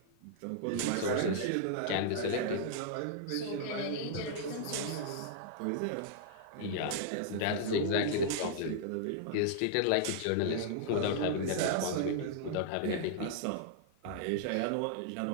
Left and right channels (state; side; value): different; both; correlation -0.01